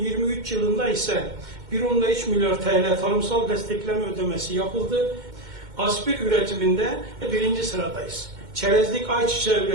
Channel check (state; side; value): late; left; 2.1 ms